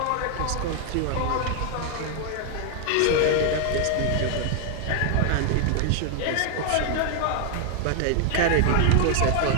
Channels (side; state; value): both; different; correlation 0.00